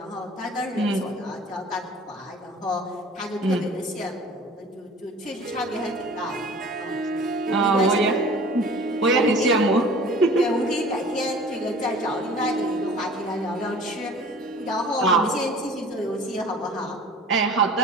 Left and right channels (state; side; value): normal; both; correlation 0.45